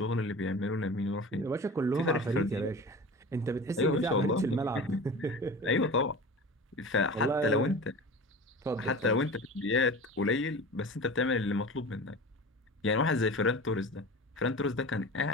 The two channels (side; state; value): both; normal; correlation 0.34